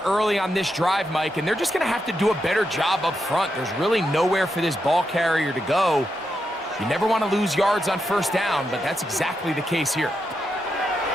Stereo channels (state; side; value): normal; both; correlation 0.84